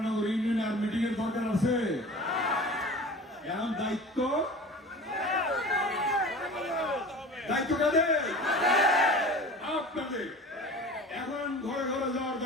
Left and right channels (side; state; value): both; normal; correlation 0.38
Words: ইউনিয়নে আর মিটিং এর দরকার আছে? এখন দায়িত্ব দায়িত্ব কাদের? আপনাদের। এখন ঘরে ঘরে যাওয়ার